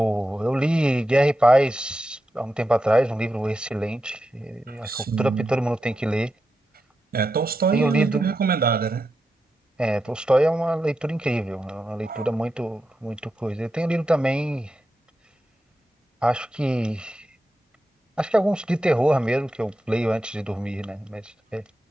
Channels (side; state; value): both; normal; correlation 0.89